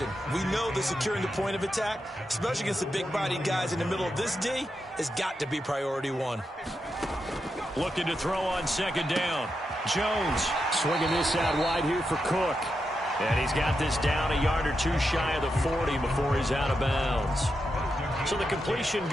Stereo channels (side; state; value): both; normal; correlation 0.86